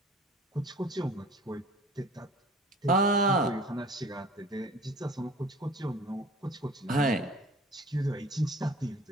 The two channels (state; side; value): normal; both; correlation 0.46